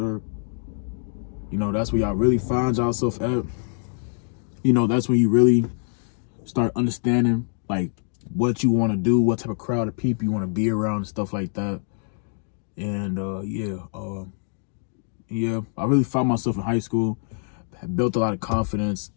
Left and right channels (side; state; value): right; silent; 56 dB below the other